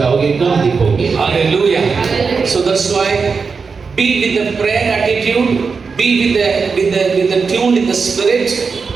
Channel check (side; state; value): left; quieter; 5.1 dB